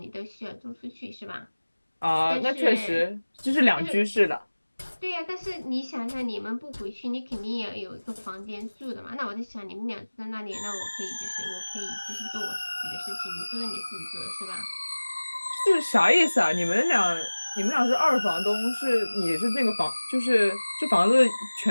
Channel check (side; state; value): both; inverted; correlation -1.00